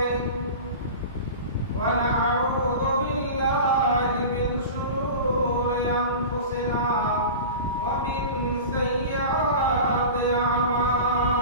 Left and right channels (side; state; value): both; inverted; correlation -0.33